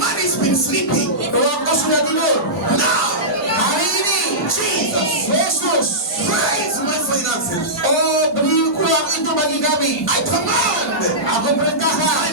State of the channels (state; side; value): normal; both; correlation -0.16